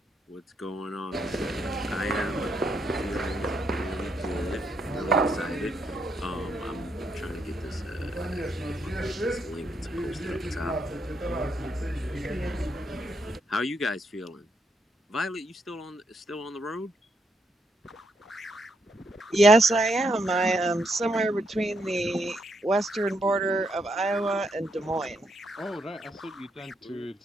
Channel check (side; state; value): both; normal; correlation 0.77